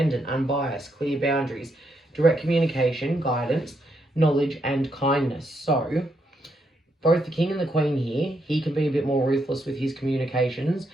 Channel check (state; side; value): normal; both; correlation 0.78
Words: unbiased, clear boundaries, direct communication, guidance, knowledge, and kindness. So both the King and the Queen here, he can be a bit more ruthless with his communications.